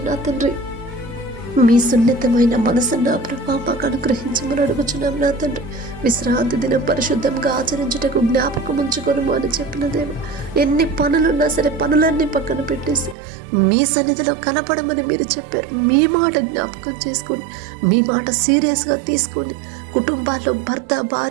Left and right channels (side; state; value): left; drops out; at 13.2 s